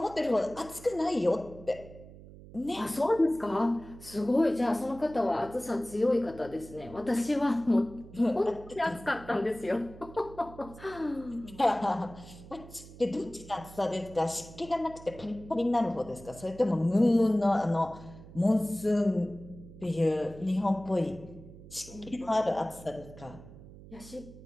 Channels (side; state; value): right; noise; hum, 18 dB below the sound